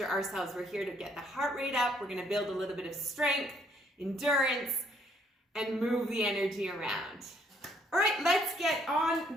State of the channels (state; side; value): normal; both; correlation 0.67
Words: ourselves. We're here to get the heart rate up. We're going to build a little bit of strength, endurance, and move the energy around. All right, let's get on